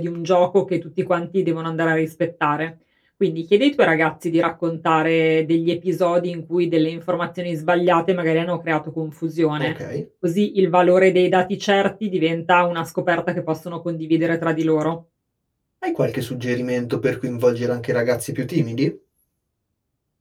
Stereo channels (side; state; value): both; identical; correlation 1.00